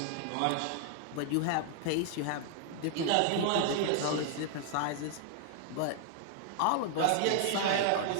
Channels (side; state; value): both; different; correlation 0.00